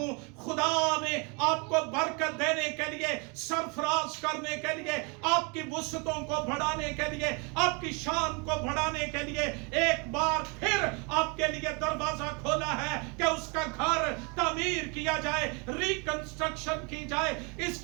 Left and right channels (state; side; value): quieter; left; 32.0 dB